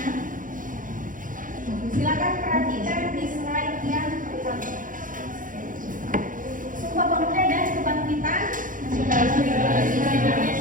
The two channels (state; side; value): late; left; 0.39 ms